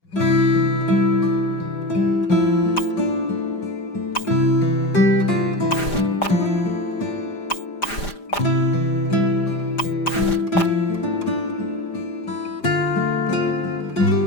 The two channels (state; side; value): late; right; 5.0 ms